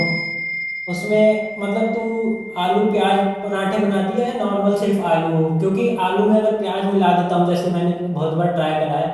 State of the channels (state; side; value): identical; both; correlation 1.00